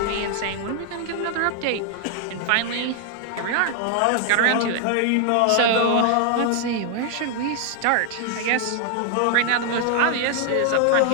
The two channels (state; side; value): different; both; correlation 0.00